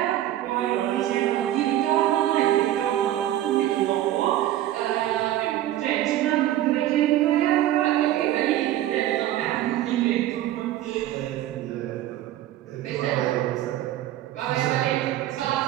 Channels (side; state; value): left; quieter; 13.4 dB